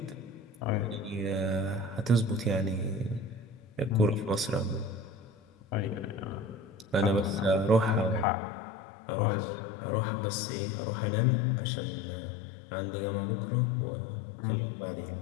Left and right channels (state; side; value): drops out; right; at 8.2 s